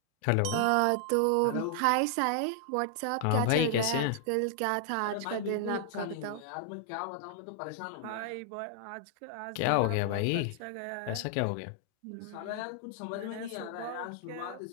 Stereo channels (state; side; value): different; both; correlation -0.01